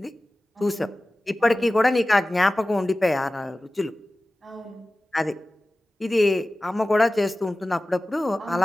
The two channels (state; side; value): normal; both; correlation 0.96